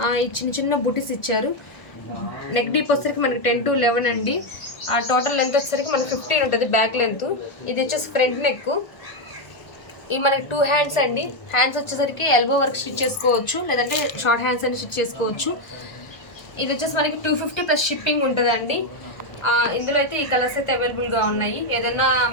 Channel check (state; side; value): late; right; 1.4 ms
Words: ఈ చిన్న చిన్న బుటీస్ ఇచ్చారు. నెక్ డీప్ వచ్చేసరికి మనకి 10 to 11 అండి. టోటల్ లెంత్ వచ్చేసరికి మనకి 15 ఉంటుంది బ్యాక్ లెంత్. ఇది వచ్చేసి ఫ్రంట్ నెక్. ఇవి మనకి 2 హ్యాండ్స్ అండి. హ్యాండ్స్ వచ్చేసరికి ఎల్బో వర్క్ స్టిచ్ చేసుకోవచ్చు, లేదంటే షార్ట్ హ్యాండ్స్ అని స్టిచ్ చేసుకోవచ్చు. ఇది వచ్చేసి మనకి 250 ప్లస్ షిప్పింగ్ ఉంటుందండి. ఇందులో అయితే ఈ కలర్స్ అయితే అవైలబుల్గా ఉన్నాయి. ఏదైనా